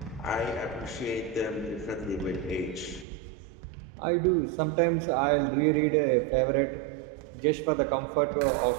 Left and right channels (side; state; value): left; drops out; at 3.1 s